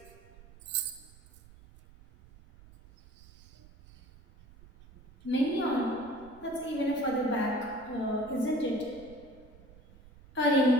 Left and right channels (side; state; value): right; noise; rumble, 22 dB below the sound